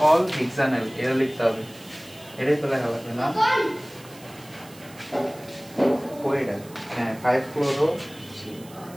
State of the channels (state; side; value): noise; right; hiss, 22 dB below the sound